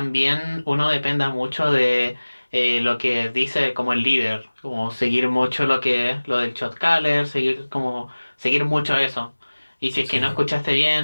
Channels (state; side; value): inverted; both; correlation -1.00